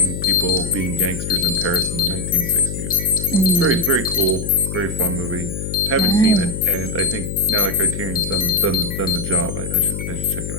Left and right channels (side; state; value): left; noise; hum, 6 dB below the sound